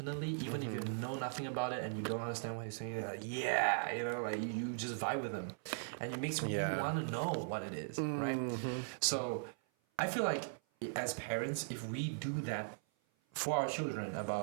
even if you know nothing about it and you don't understand what he's saying, like, you just vibe with them, and it makes you want to know what it is, right? So I feel like, as parents, if we do that for our children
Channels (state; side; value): silent; left; 52 dB below the other